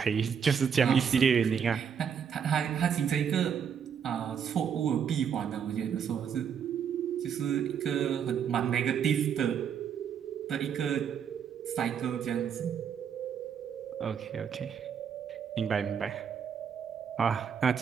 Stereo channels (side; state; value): left; quieter; 7.5 dB